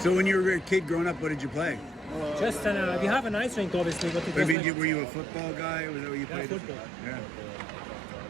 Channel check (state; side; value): drops out; left; at 4.5 s